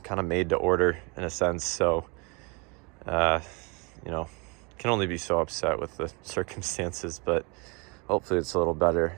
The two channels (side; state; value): left; quieter; 30.2 dB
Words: kind of made to order in a sense. So can only be so upset with the circumstances, but hopefully it's a little better